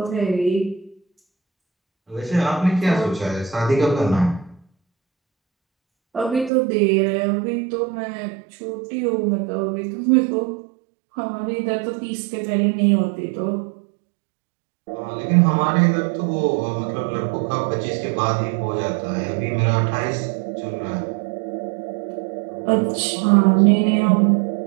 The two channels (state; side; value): drops out; left; at 6.5 s